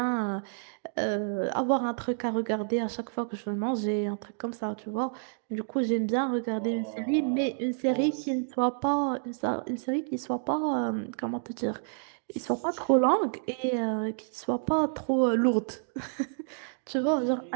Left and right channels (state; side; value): silent; left; digital silence